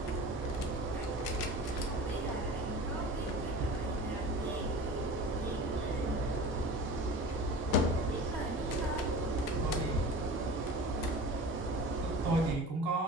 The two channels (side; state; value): both; normal; correlation 0.37